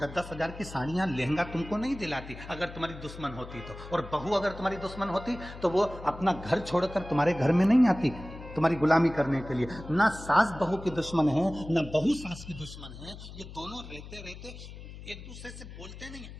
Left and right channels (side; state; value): left; noise; hum, 13 dB below the sound